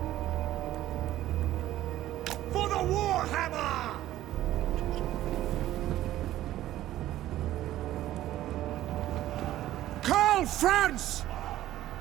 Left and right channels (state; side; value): quieter; left; 14.1 dB